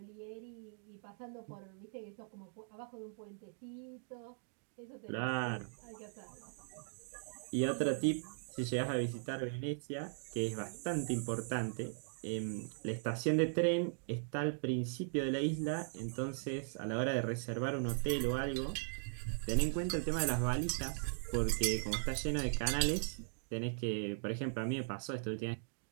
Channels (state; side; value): silent; left; digital silence